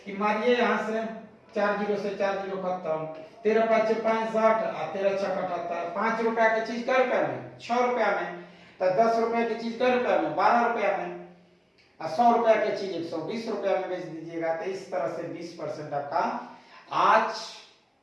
कि मारिए यहाँ से 4 0 से 4 0 खत्म, 13 5 65 और 13 6 78। 5 रुपया की चीज कै रुपया में 6 रुपया में, तो 10 रुपया की चीज कै रुपया में 12 रुपया में, और 100 रुपया की चीज 120 रुपया में बेच दीजिएगा। तो इस तरह से 20% आपका। आज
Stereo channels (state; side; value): identical; both; correlation 1.00